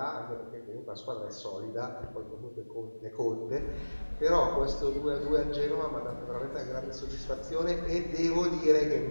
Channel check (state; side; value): inverted; both; correlation -1.00